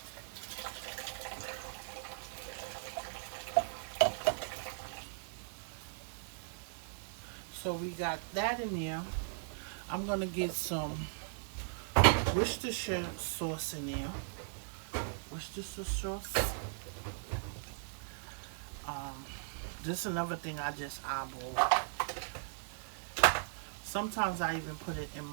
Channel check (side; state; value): left; silent; digital silence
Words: So we got that in there. I'm going to get some Worcestershire sauce in there. Worcestershire sauce. This is another thing I just eyeball. Sometimes I even put it in